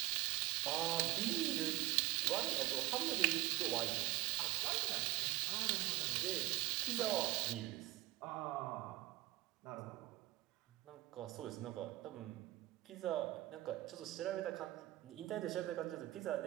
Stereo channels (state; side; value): quieter; left; 18.0 dB